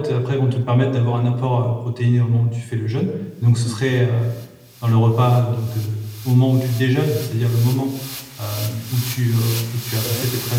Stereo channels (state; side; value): identical; both; correlation 1.00